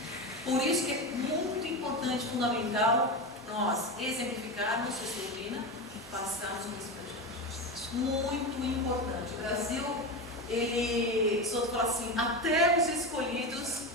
Por isso que é muito importante, fundamental, nós exemplificarmos essa doutrina e passarmos isso para gente. Muito importante. O Brasil, ele, só fala assim, até os escolhidos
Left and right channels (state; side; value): normal; both; correlation 0.19